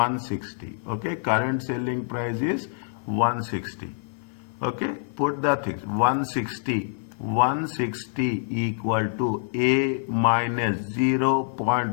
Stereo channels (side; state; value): right; silent; 56 dB below the other